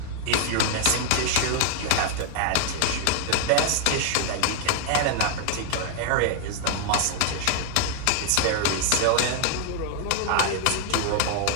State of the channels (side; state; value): both; different; correlation 0.00